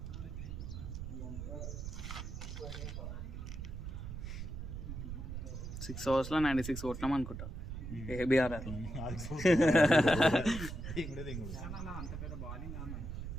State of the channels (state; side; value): noise; right; rumble, 7 dB below the sound